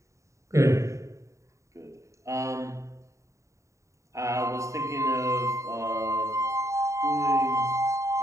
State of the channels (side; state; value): left; late; 0.15 ms